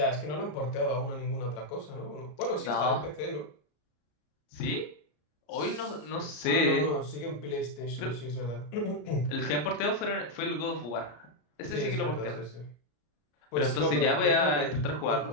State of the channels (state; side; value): late; right; 33 ms